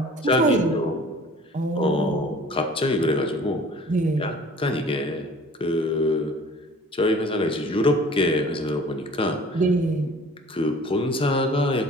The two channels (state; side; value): normal; both; correlation 0.48